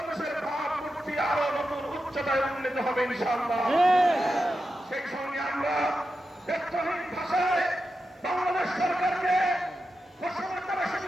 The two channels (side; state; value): both; normal; correlation 0.89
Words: ভাবমূর্তি আরো নতুন উচ্চতায় উন্নীত হবে ইনশাআল্লাহ। সেই সঙ্গে আমরা ব্যক্তহীন ভাষায় বাংলাদেশ সরকারকে ঘোষণা করে